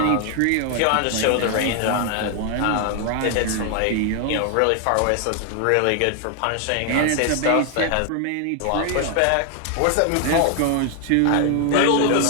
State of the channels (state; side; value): different; both; correlation 0.00